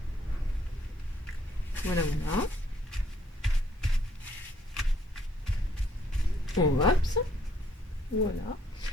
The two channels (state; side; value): normal; both; correlation 0.66